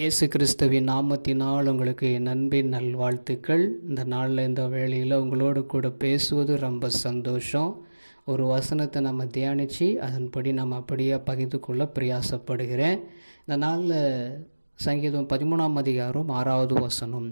இயேசு கிறிஸ்துவின் நாமத்தினால் உங்களுக்கு என் அன்பின் நல்வாழ்த்துக்கள். இந்த நாளில் இந்த வேளையில் உங்களோடு கூட பேசுவது ரொம்ப சந்தோஷம். ஒரு வசனத்தை நம்ம தியானித்து அதன்படி நம்ம அப்படியே பகிர்ந்து கொள்ள பிரயாசப்படுகிறேன். இந்த நாளில் சங்கீதம் 13ஆம் அதிகாரம் 6வது வசனம்,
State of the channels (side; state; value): both; inverted; correlation -1.00